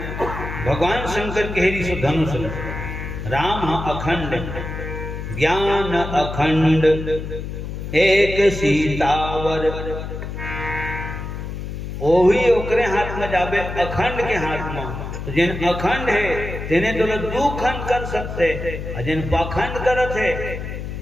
भगवान शंकर कहेरी सो धनुष राम अखंड ज्ञान अखंड एक सीतावर। ओही ओकरे हाथ में जाबे अखंड के हाथ में। तो जिन अखंड है तेने तो दू खंड कर सकते, और जिन पाखंड करत है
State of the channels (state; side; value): noise; left; hum, 7 dB below the sound